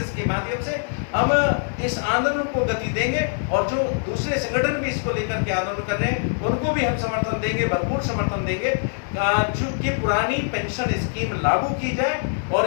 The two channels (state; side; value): silent; right; 63 dB below the other